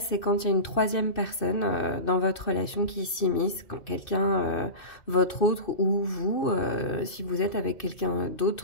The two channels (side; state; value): right; late; 2.6 ms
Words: quand il y a une troisième personne dans votre relation qui s'immisce, quand quelqu'un, votre autre ou vous, si vous êtes avec quelqu'un